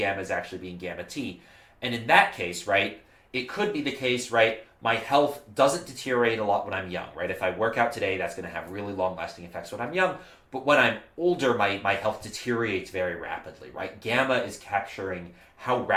as actually being gamma t. And in that case, right, it could be the case, right, my health doesn't deteriorate a lot when I'm young, right? If I work out today, that's going to have really long-lasting effects when I'm young. But when I'm older, my health deteriorates very rapidly, right? Gamma is capturing how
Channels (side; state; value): both; identical; correlation 1.00